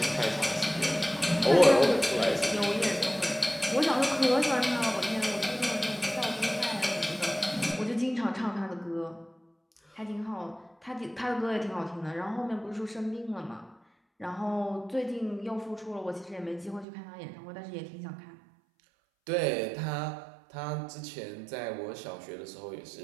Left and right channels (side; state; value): left; drops out; at 16.9 s